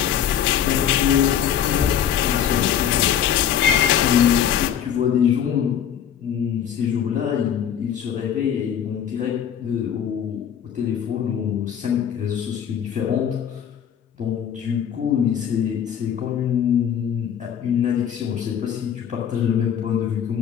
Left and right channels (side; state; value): right; quieter; 9.2 dB